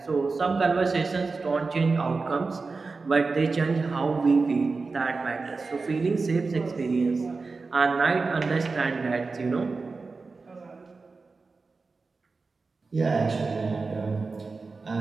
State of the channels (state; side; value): quieter; left; 4.1 dB